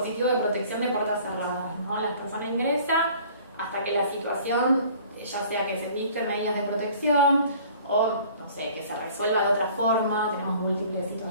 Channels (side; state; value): both; inverted; correlation -0.51